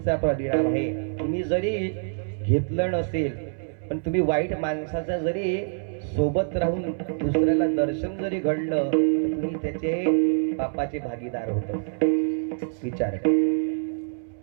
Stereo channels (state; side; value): silent; left; 61 dB below the other